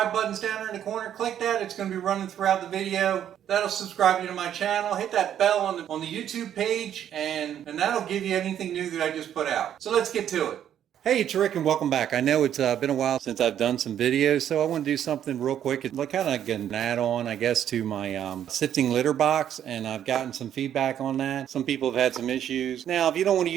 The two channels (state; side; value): quieter; left; 10.1 dB